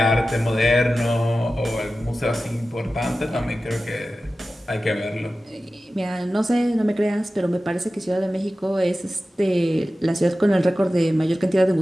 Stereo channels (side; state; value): both; normal; correlation 0.95